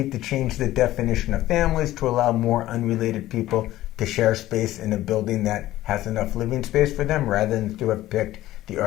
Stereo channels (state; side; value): quieter; right; 15.2 dB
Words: to change the definition of families to allow more unrelated people to share space in a building that has enough living space for them, rather than to have picked the